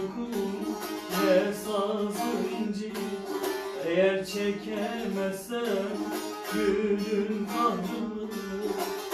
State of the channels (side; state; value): both; identical; correlation 1.00